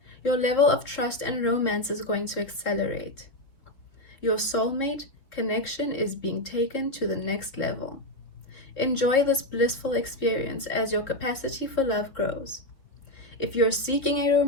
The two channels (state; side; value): late; right; 4.0 ms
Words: your level of trust and romance is going to accelerate. Your soulmate connection is being taken to the next level. Enjoy this blissful experience as your capacity for love grows. If you're seeking a